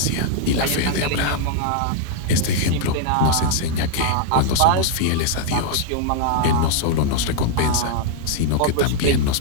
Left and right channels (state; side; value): different; both; correlation -0.01